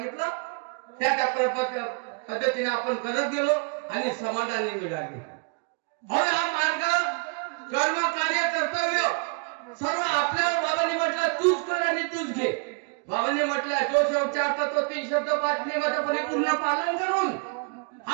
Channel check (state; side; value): quieter; left; 35.7 dB